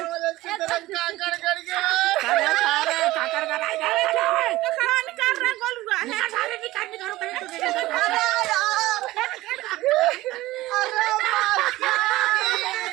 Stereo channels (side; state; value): left; quieter; 17.7 dB